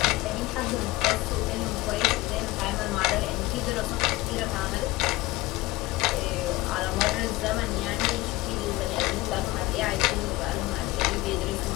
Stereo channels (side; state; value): right; quieter; 19.5 dB